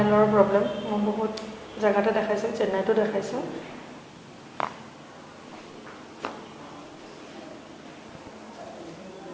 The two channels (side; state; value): both; identical; correlation 1.00